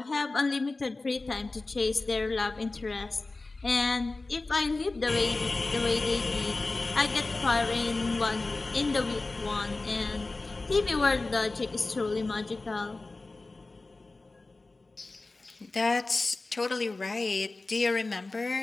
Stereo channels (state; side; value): quieter; right; 3.3 dB